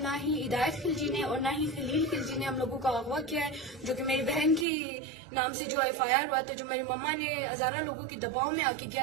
نہ ہی ہدایت خلجی نے اور نہ ہی خلیل خلجی نے ہم لوگوں کا اغوا کیا ہے، جو کہ میری بہن کی نام سے جو FIR ہوا تھا، جو میری مما نے ہزارہ لوگوں کے دباؤ میں آ کے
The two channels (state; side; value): drops out; left; at 4.7 s